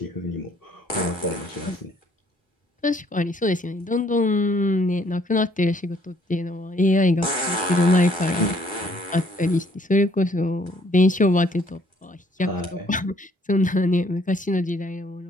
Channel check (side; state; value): both; normal; correlation 0.63